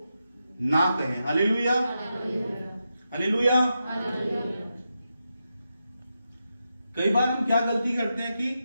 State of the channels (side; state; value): both; inverted; correlation -0.87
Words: ना कहें। Hallelujah, hallelujah. कई बार हम क्या गलती करते हैं कि